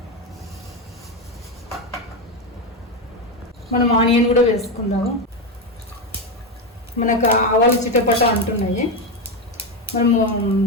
మనం ఆనియన్ కూడా వేసుకుందాము. మనకు ఆవాలు చిటపట అంటున్నాయి. మనము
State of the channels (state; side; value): normal; both; correlation 0.11